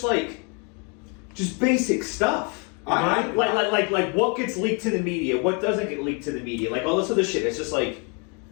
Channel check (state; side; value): quieter; right; 35.1 dB